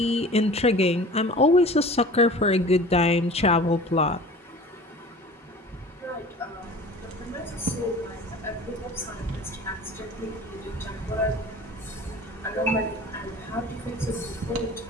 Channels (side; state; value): both; normal; correlation 0.42